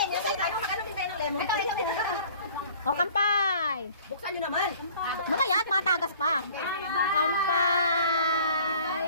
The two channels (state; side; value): inverted; both; correlation -0.50